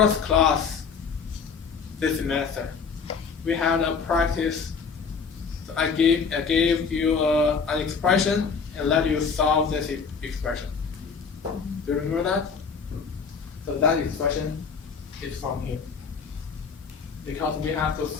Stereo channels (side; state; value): right; quieter; 5.6 dB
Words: class this semester, we had a practice. So I gave you an expression and let you solve this expression. Do you remember that? So that expression is from here. Because we have to